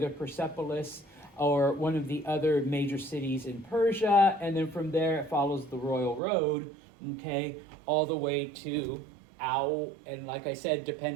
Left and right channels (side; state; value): left; drops out; at 6.2 s